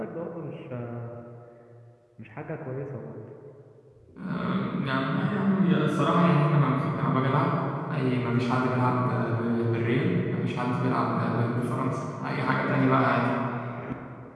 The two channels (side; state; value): both; identical; correlation 1.00